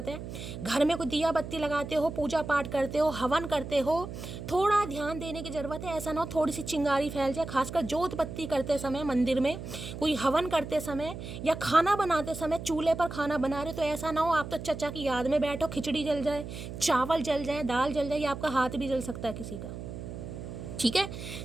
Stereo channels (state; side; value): noise; right; hum, 9 dB below the sound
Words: है। घर में कोई दिया बत्ती लगाते हो, पूजा पाठ करते हो, हवन करते हो, थोड़ा ध्यान देने की ज़रूरत है। ऐसा ना हो थोड़ी सी चिंगारी फैल जाए। खासकर जोत बत्ती करते समय मंदिर में, कोई हवन करते समय या खाना बनाते समय चूल्हे पर खाना बना रहे, तो ऐसा ना हो आप तो चचा की याद में बैठो, खिचड़ी जल जाए, चावल जल जाए, दाल जल जाए, या आपका हाथ भी जल सकता है किसी का। ठीक है,